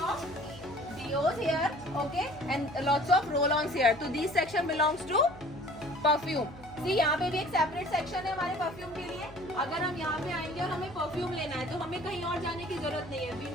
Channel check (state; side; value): noise; left; hum, 21 dB below the sound